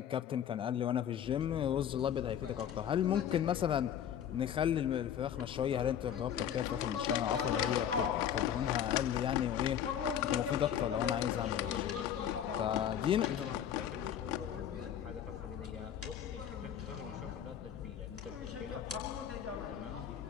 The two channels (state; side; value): quieter; right; 9.5 dB